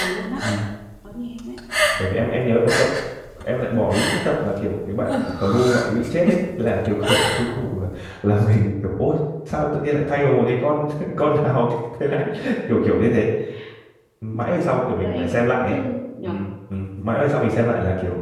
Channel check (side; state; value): both; identical; correlation 1.00